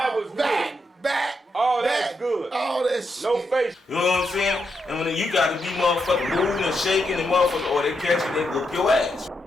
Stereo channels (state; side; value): normal; both; correlation 0.82